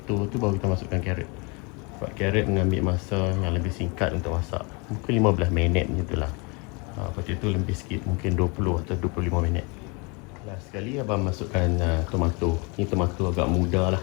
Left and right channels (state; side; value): quieter; right; 30.5 dB